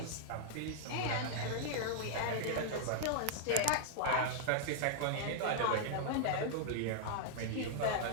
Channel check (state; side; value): different; both; correlation -0.01